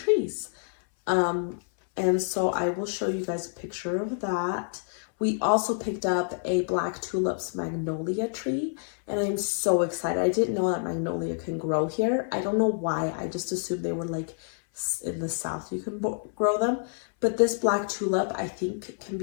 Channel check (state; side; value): silent; right; 60 dB below the other